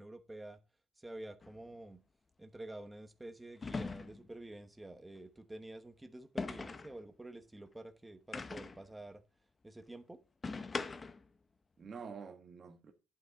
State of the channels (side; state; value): both; normal; correlation 0.92